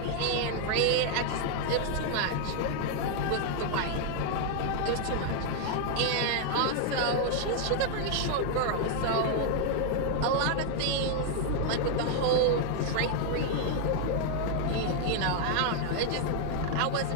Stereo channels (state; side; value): different; both; correlation 0.00